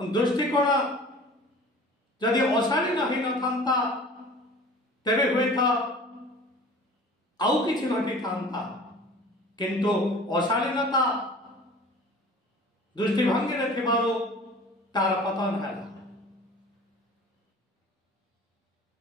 ଦୃଷ୍ଟିକୋଣ ଯଦି ଅଶାଳୀନ ହେଇନଥାନ୍ତା, ତେବେ ହୁଏତ ଆଉ କିଛି ଘଟିଥାନ୍ତା। କିନ୍ତୁ ଅଶାଳୀନତା ଦୃଷ୍ଟିଭଙ୍ଗୀରେ ଥିବାରୁ ତାର ପତନ ହେଲା।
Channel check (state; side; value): normal; both; correlation 0.44